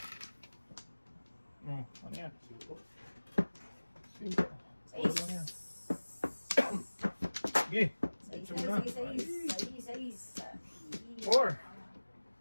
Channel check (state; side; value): inverted; both; correlation -1.00